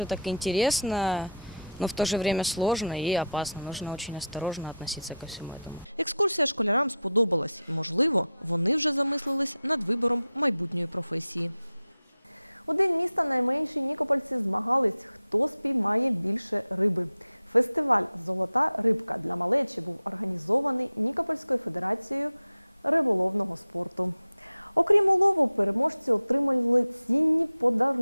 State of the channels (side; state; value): both; inverted; correlation -0.76